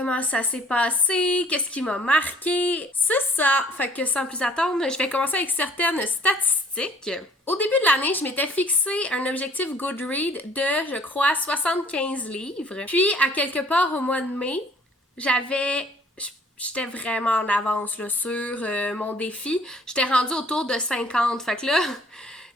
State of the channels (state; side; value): normal; both; correlation 0.57